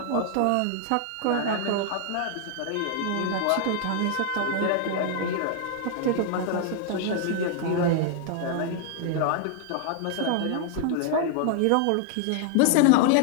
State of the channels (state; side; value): different; both; correlation 0.00